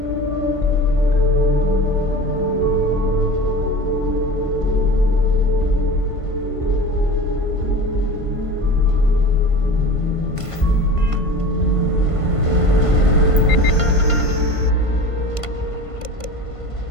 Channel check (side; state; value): right; late; 1.5 ms